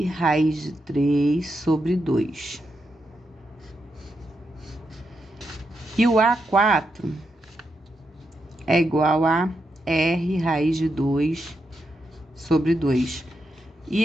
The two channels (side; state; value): both; normal; correlation 0.84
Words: raiz de 3 sobre 2. E o A4 é igual a R raiz de 2 sobre 2. E